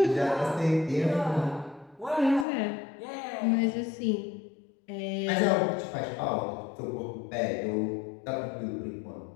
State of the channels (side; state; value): right; drops out; at 2.5 s